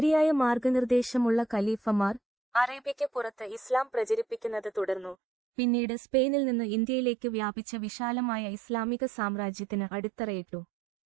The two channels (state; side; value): drops out; left; at 5.2 s